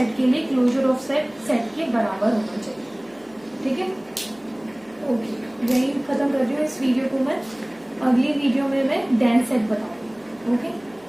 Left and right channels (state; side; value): noise; right; hum, 29 dB below the sound